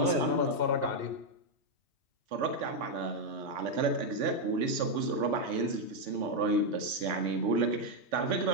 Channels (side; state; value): left; late; 3.4 ms